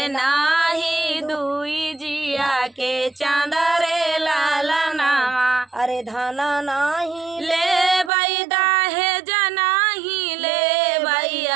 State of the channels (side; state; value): left; drops out; at 8.1 s